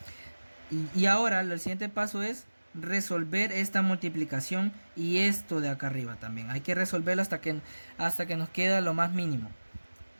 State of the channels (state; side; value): inverted; both; correlation -1.00